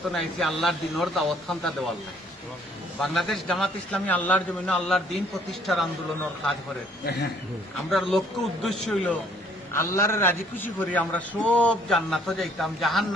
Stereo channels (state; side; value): normal; both; correlation 0.62